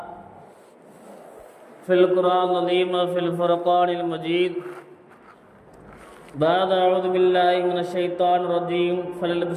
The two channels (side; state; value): both; identical; correlation 1.00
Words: फ़िल क़ुरआनिल अज़ीम व फ़िल फ़ुरक़ानिल मजीद बाद अऊज़ु बिल्लाहि मिनश शैतानिर रजीम